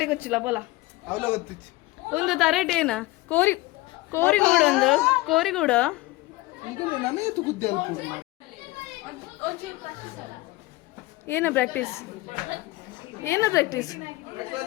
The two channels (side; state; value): right; quieter; 20.4 dB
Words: ಗೊಚ್ಚಿಲ್ಲ ಬೋಲ ಒಂದು ತರಟೇನ ಕೋರಿಗೂಡು ಒಂದು ಕೋರಿಗೂಡು ಏನ ಪ್ರಾಕ್ಟೀಸ್